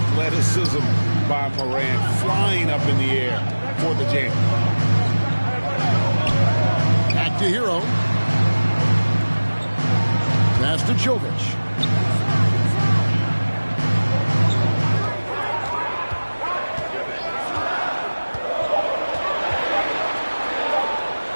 by Morant, flying up in the air for the jam. Back to Hero. Pass to Jovic.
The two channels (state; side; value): inverted; both; correlation -1.00